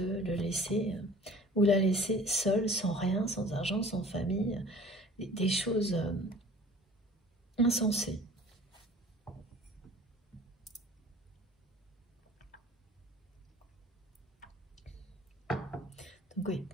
le laisser ou la laisser seule, sans rien, sans argent, sans famille, des choses insensées. Donc oui,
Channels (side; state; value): both; normal; correlation 0.47